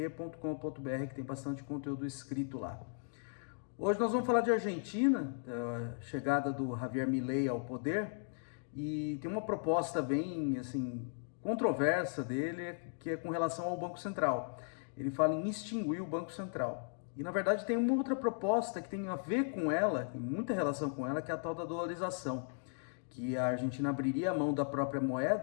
que tem bastante conteúdo escrito lá. Hoje nós vamos falar de Argentina, a chegada do Javier Milei ao poder, e tem uma proposta bem assim controversa dele, que é com relação ao Banco Central. Ele fala em extinguir o Banco Central. E na verdade tem uma outra proposta que tem a ver com ela, tem muita relação com ela, que é a tal da dolarização, que a Argentina abriria a mão da própria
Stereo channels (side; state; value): right; silent; digital silence